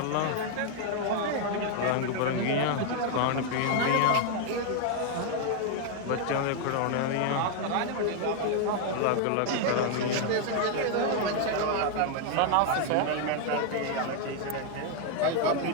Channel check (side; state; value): both; different; correlation 0.00